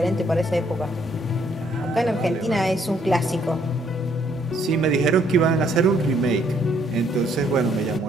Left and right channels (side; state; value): both; normal; correlation 0.68